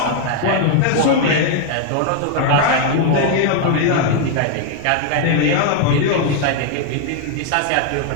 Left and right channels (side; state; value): both; different; correlation 0.01